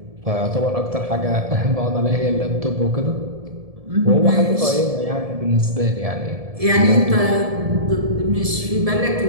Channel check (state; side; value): late; left; 1.7 ms